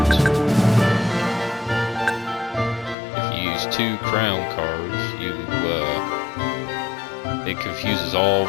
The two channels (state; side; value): drops out; right; at 3.0 s